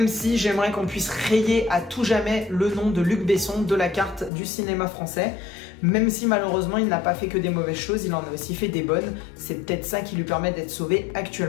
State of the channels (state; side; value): drops out; right; at 4.3 s